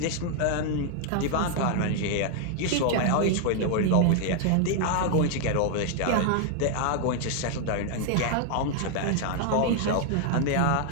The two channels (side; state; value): both; different; correlation 0.00